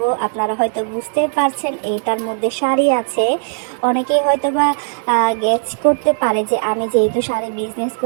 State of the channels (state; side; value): silent; left; digital silence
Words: আপনারা হয়তো বুঝতে পারছেন এটার মধ্যে শাড়ি আছে। অনেকেই হয়তো বা গেস করতে পারে যে আমি যেহেতু শাড়ি বিজনেস